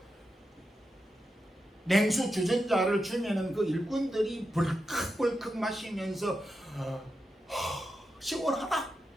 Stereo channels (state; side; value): normal; both; correlation 0.88